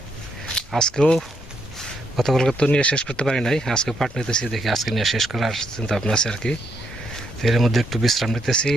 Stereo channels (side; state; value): both; normal; correlation 0.76